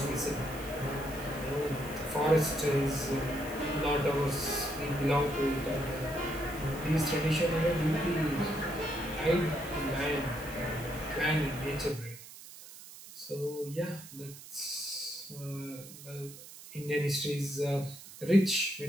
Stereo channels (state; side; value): noise; right; hiss, 16 dB below the sound